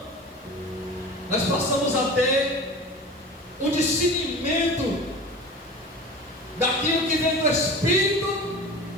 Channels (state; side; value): normal; both; correlation 0.35